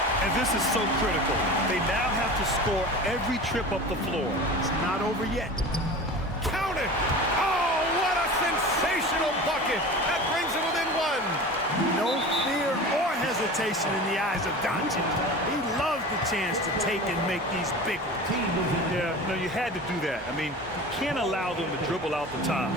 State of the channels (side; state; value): both; normal; correlation 0.34